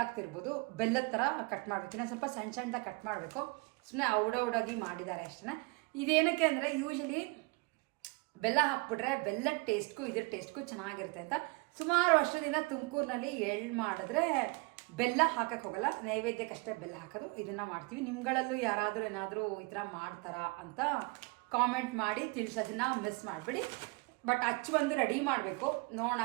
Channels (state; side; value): quieter; left; 27.0 dB